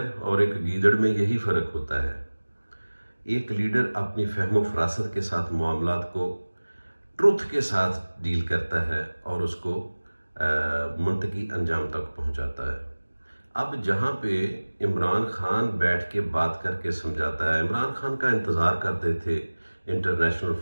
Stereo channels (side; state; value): both; inverted; correlation -1.00